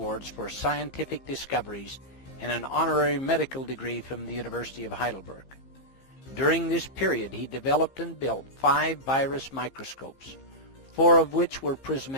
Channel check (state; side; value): late; right; 15 ms